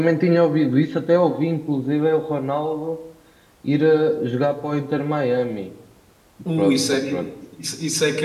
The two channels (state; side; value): identical; both; correlation 1.00